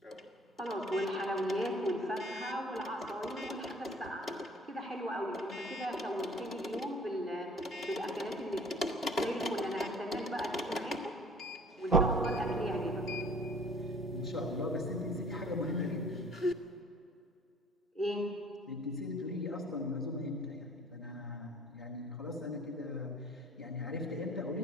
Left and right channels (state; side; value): normal; both; correlation 0.51